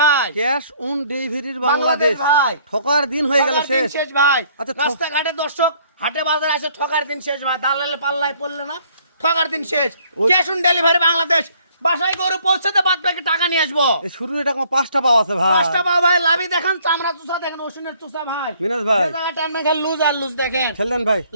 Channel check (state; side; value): inverted; both; correlation -0.62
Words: ভাই। ক্যাশ অন ডেলিভারির বাংলাদেশ ভাই। ঠকার দিন হয়ে গেল ঠকার দিন শেষ। শেষ ভাই। আচ্ছা, রাস্তাঘাটে দর্শক হাটে বাজারে আসে ঠকার দিন শেষ ভাই। দালালে পাল্লায় পড়লে না, ঠকার দিন শেষ। Cash on delivery Bangladesh. বাসায় গরু পৌঁছাতে বাদ বাকি টাকা নিয়ে আসবো। এই শুরু এটা কোনো 5টা পাওয়া আছে ভাই। 5টা পাও ভাই। লাভি দেখেন, চামড়া চুষা দেখেন, ওষুনের চুষা ভাই। মিনাজ ভাই। যে জায়গায় টানবেন খালি লুজ আর লুজ দেখেন। খেললেন ভাই।